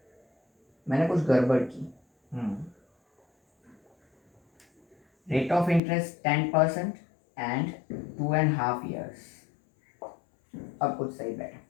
मैंने कुछ गड़बड़ की। Rate of interest 10% and 2.5 years, अब कुछ सही बैठा,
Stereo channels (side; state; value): right; drops out; at 5.8 s